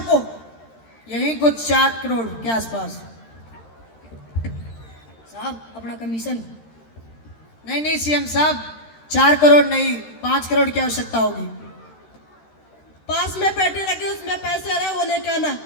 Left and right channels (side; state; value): right; late; 13 ms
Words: यही कुछ 4 करोड़ के आसपास। साहब अपना कमीशन। नहीं सीएम साहब, 4 करोड़ नहीं, 5 करोड़ की आवश्यकता होगी। पास में पेटी रखी, उसमें पैसे रहे, वो लेके आना।